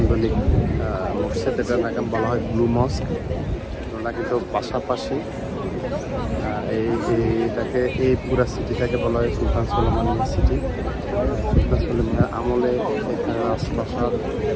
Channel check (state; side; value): identical; both; correlation 1.00